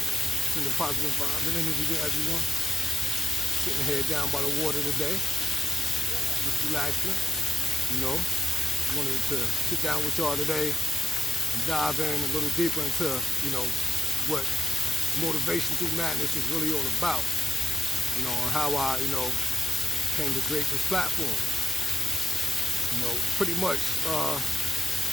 Sending positive vibes and energy to everyone. Sitting here down by the water today. Just relaxing. You know, wanted to sit down with y'all today and dive in a little deeper into, what motivation through madness is really all about. And how I, came to create this platform. Pretty much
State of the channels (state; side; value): normal; both; correlation 0.86